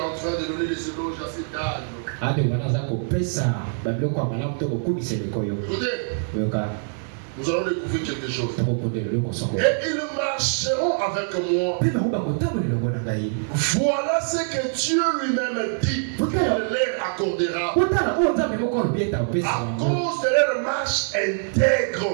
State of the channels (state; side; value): silent; left; 62 dB below the other